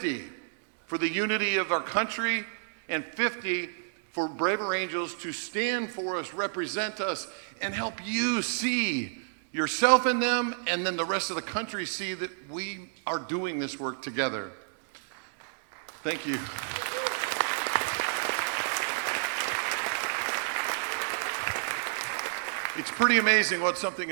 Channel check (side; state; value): left; silent; digital silence